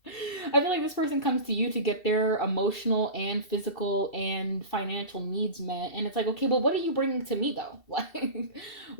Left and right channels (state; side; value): late; right; 2.7 ms